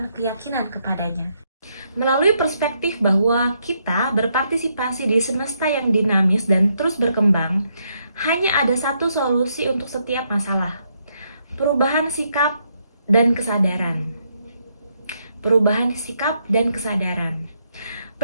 keyakinan kepadanya. Melalui perspektif bahwa kita berpartisipasi di semesta yang dinamis dan terus berkembang, hanya ada satu solusi untuk setiap masalah. Perubahan sikap dan kesadaran. Perubahan sikap dan kesadaran.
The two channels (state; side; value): inverted; both; correlation -0.76